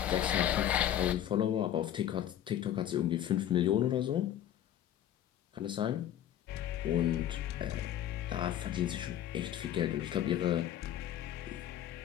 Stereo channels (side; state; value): right; quieter; 11.1 dB